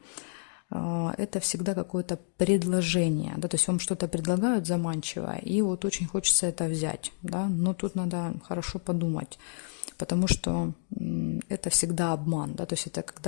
это всегда какое-то предложение, да, то есть вам что-то предлагают заманчивое, и вот очень хочется это взять, да, но тут надо хорошо подумать, потому что это всегда обман, да, то есть это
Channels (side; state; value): right; silent; digital silence